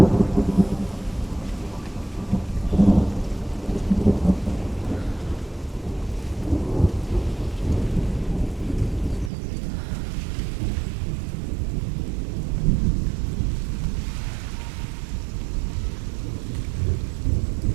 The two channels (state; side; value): drops out; left; at 9.3 s